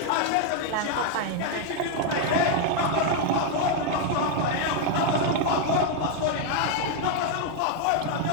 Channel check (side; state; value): both; different; correlation 0.01